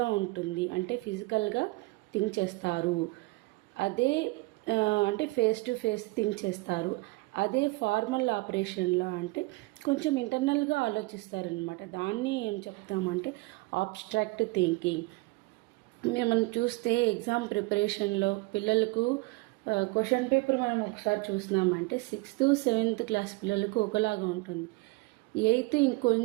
ఉంటుంది, అంటే ఫిజికల్గా థింక్ చేస్తారు. అదే అంటే ఫేస్ టు ఫేస్ థింక్ చేస్తారు. అదే ఫార్మల్ ఆపరేషన్లో అంటే కొంచెం ఇంటర్నల్గా ఆలోచిస్తారనమాట. దాన్ని ఏం చెప్తామంటే ఆబ్స్ట్రాక్ట్ థింకింగ్. మనం చూస్తే ఎగ్జామ్ ప్రిపరేషన్లో పిల్లలకు క్వశ్చన్ పేపర్ మనం ఒకసారి చూసినామంటే 6th 7th క్లాస్ పిల్లలకు ఒకలాగా ఉంటుంది. 8th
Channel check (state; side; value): quieter; left; 23.8 dB